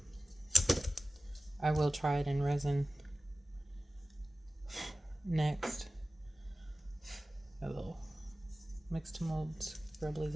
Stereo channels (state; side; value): normal; both; correlation 0.97